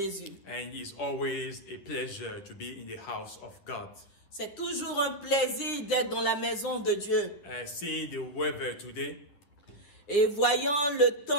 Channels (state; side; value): late; right; 10 ms